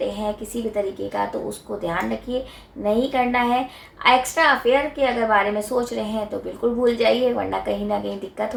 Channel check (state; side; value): identical; both; correlation 1.00